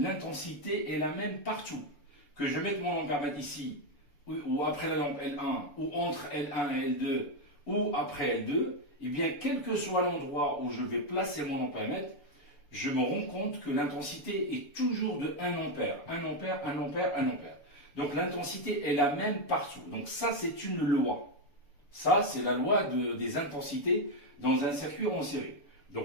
est la même partout. Que je mette mon ampère-mètre ici, ou après la lampe L1, ou entre L1 et L2, ou après L2, et bien quel que soit l'endroit où je vais placer mon ampère-mètre, je me rends compte que l'intensité est toujours de 1 ampère, 1 ampère, 1 ampère, 1 ampère. Donc l'intensité est la même partout. Donc ça, c'est une loi. Ça, c'est la loi des intensités dans un circuit en série.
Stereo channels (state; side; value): late; right; 6.9 ms